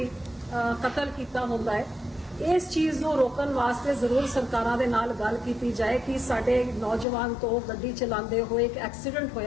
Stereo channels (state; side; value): drops out; right; at 7.1 s